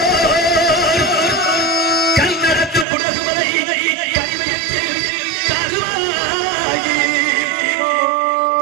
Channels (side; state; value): left; drops out; at 2.9 s